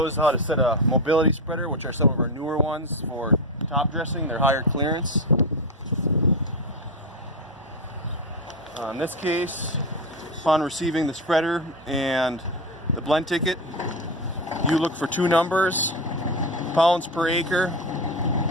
is how to set a mobility spreader, which are some of our newer ones for top dressing. They're higher clearance. In this case, upon receiving the spreader and the blend ticket, you look for two numbers, pounds per acre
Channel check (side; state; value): both; normal; correlation 0.16